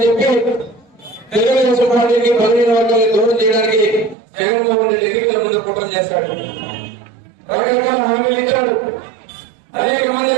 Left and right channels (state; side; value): drops out; left; at 4.2 s